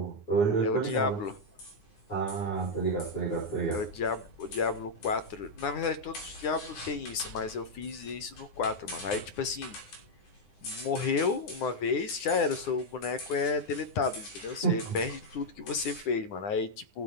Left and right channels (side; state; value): right; late; 9.8 ms